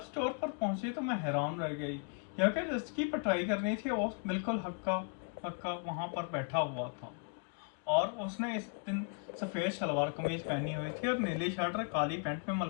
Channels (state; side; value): quieter; right; 39.5 dB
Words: स्टोर पर पहुंची तो मैं हैरान रह गई, क्योंकि जिसकी पिटाई करनी थी वो बिल्कुल हक्का पक्का वहां पर बैठा हुआ था। और उसने इस दिन सफेद शलवार कमीज पहनी हुई थी और नीली शर्ट और काली पैंट में